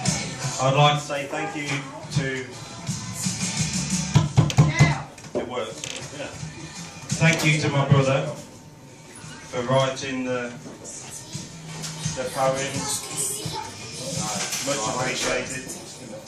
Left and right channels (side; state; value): both; identical; correlation 1.00